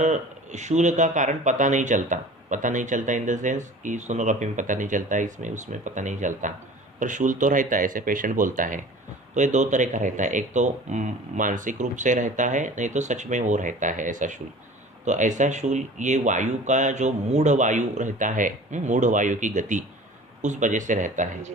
शूल का कारण पता नहीं चलता। पता नहीं चलता इन द सेंस कि सोनोग्राफी में पता नहीं चलता, इसमें उसमें पता नहीं चलता, पर शूल तो रहता है, ऐसे पेशेंट बोलता है। तो ये दो तरह का रहता है, यस। एक तो मानसिक रूप से रहता है, नहीं तो सच में वो रहता है ऐसा शूल। तो ऐसा शूल ये वायु का जो मूढ़ वायु रहता है, मूढ़ वायु की गति, उस वजह से रहता है। जी।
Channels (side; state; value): both; normal; correlation 0.43